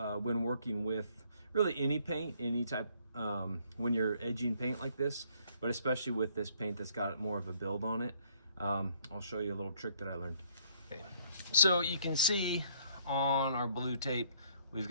working with really any paint, any type, when you're edging paint like this, but especially with this paint that's got more of a build on it. I'll show you a little trick that I learned. Okay. So you can see on our blue tape, we've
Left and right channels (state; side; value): inverted; both; correlation -0.65